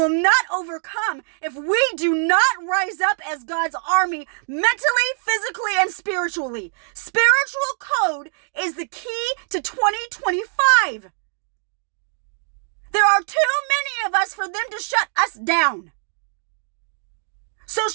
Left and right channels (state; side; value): silent; left; digital silence